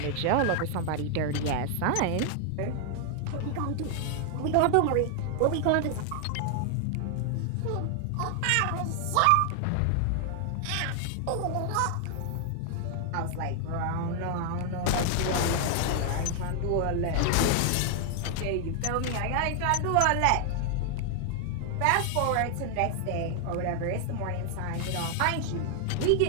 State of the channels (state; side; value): different; both; correlation 0.00